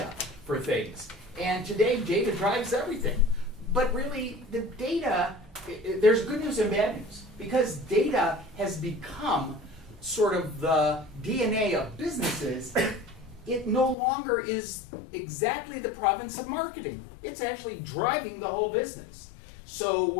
for things. And today, data drives everything. But really, the data, there's good news and bad news, because data has become sort of the DNA of businesses. It no longer is exactly the province of marketing. It's actually driving the whole business. So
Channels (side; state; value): right; drops out; at 14.0 s